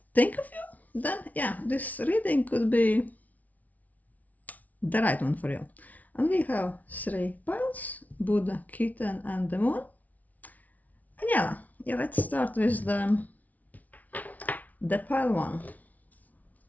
think of you, then yeah, this reading could be the right one for you. And we have three piles: Buddha, Kitten, and the Moon. And yeah, let's start with the pile one.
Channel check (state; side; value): late; right; 0.073 ms